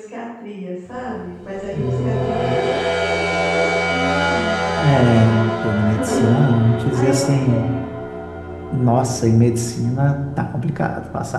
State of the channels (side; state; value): both; identical; correlation 1.00